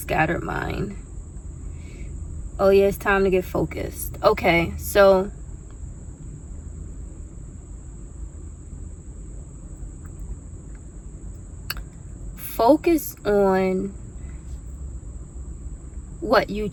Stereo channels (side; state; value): both; identical; correlation 1.00